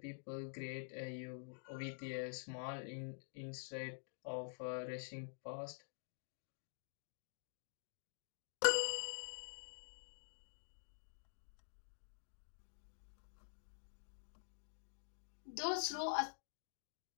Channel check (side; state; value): right; silent; digital silence